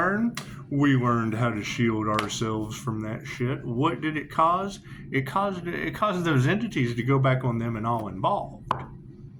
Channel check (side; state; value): both; identical; correlation 1.00